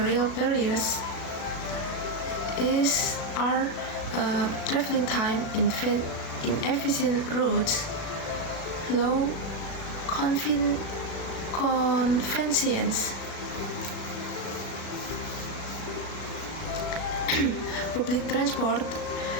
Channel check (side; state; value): right; late; 36 ms